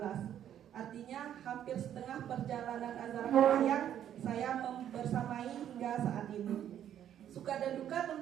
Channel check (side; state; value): left; quieter; 10.3 dB